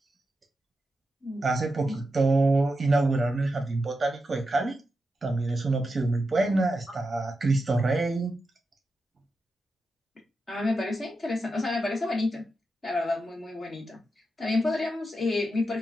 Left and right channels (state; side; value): normal; both; correlation 0.88